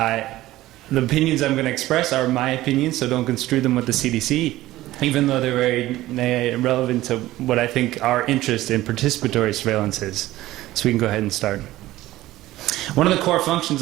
opinions I'm going to express are my opinions, so don't construe them with the CDC, even though they're very relevant to what I think our interest in participatory surveillance is. So we can go ahead and start. One of the core functions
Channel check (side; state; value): left; quieter; 16.2 dB